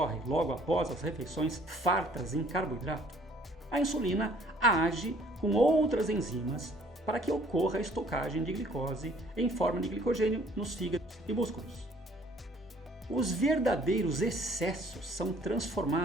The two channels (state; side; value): normal; both; correlation 0.58